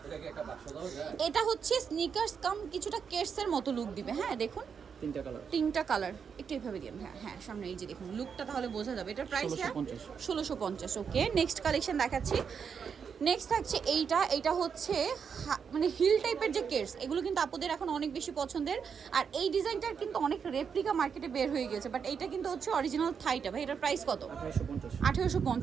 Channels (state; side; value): quieter; left; 6.6 dB